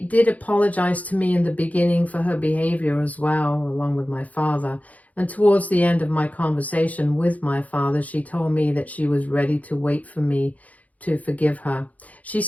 apologize to me in the beginning for her behavior as well, along with my father. And towards the end of my conversation with my father, she told me that she was ready to wait for me to forgive her. She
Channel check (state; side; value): late; right; 0.073 ms